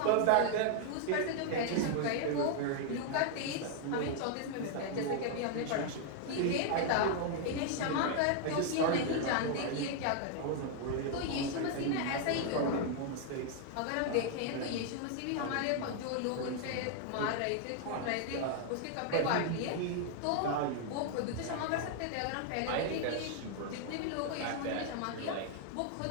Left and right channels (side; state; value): both; different; correlation 0.00